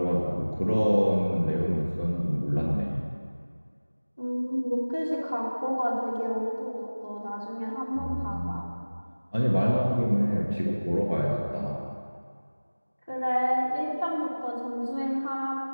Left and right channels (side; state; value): both; inverted; correlation -1.00